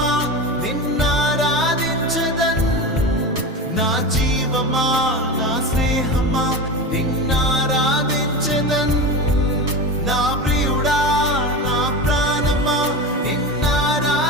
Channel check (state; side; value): normal; both; correlation 0.25